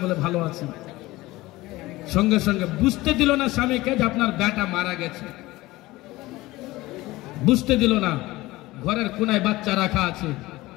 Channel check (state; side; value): quieter; right; 19.0 dB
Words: বলে ভালো আছি। সঙ্গে সঙ্গে বুঝতে দিল না স্বামীকে যে আপনার বেটা মারা গেছে, বুঝতে দিল না। ঘরের কোনায় বাচ্চা রাখা আছে,